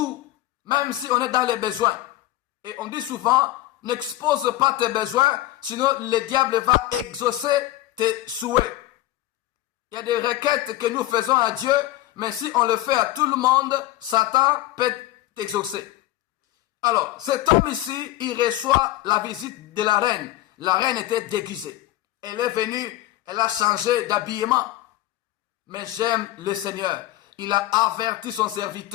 même si on est dans les besoins. Et on dit souvent, n'expose pas tes besoins, sinon le diable va exaucer tes souhaits. Il y a des requêtes que nous faisons à Dieu, mais si on le fait à tout le monde, Satan peut t'exaucer. Alors, cet homme ici, il reçoit la visite de la reine. La reine était déguisée. Elle est venue, elle a changé d'habillement. Mais j'aime le Seigneur. Il a averti son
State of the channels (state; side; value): quieter; right; 15.6 dB